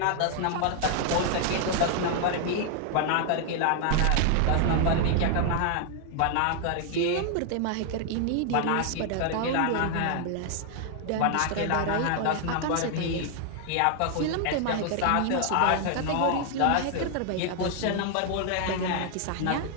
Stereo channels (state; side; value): different; both; correlation 0.00